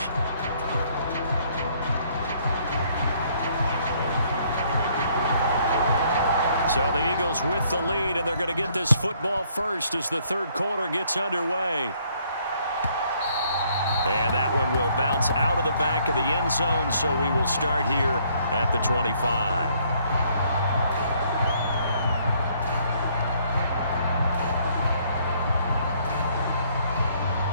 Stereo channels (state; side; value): inverted; both; correlation -0.66